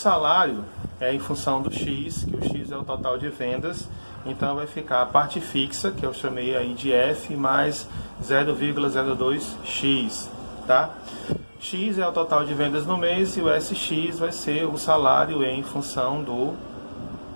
é em função do X, que o X é o total de vendas. Então vai ficar a parte fixa, que eu chamei aí de F, mais 0,02X, tá? X é o total de vendas no mês e o SX vai ser o salário em função do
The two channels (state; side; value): inverted; both; correlation -1.00